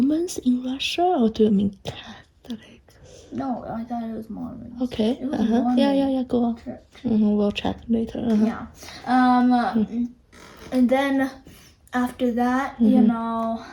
in Russia, or do you mean Catholics? No, I thought it was Mormons. Okay. It was Mormon. Yeah, go on. Church. We'll check later. Yeah. And then after that,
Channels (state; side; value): identical; both; correlation 1.00